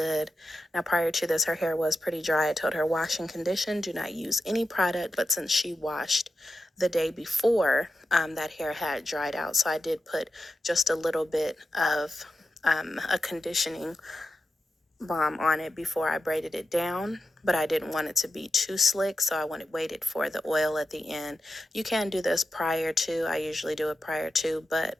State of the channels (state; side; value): normal; both; correlation 0.89